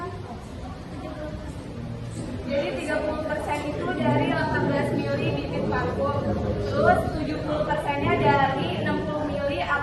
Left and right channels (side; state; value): both; identical; correlation 1.00